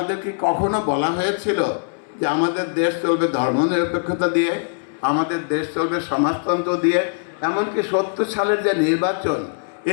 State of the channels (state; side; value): silent; right; 65 dB below the other